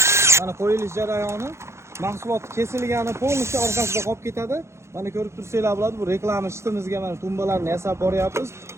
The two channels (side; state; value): left; late; 0.13 ms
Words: mana qo'yilish jarayoni, mahsulot kesilgani polностью orqasida qolib ketadi. Mana ko'rib tursanglar bo'ladi, bu reklama shitimizga mana tumbalarni yasab boryapmiz.